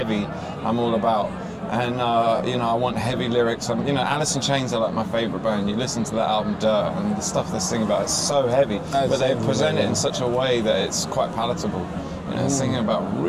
I'm all about. And you know, I want heavy lyrics. You know, Alice in Chains are like my favourite band. You listen to that album, Dirt, and the stuff they sing about is so heavy, but they present it in such a way that it's quite palatable. You know, singing about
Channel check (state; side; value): identical; both; correlation 1.00